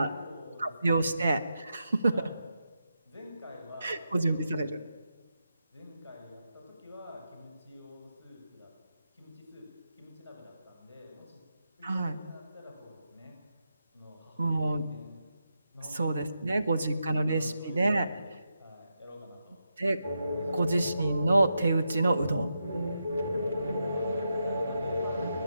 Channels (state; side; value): inverted; both; correlation -0.86